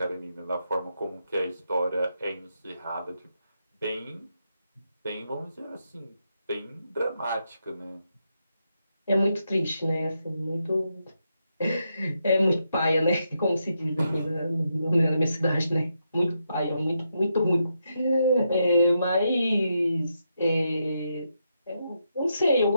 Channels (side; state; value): both; inverted; correlation -0.82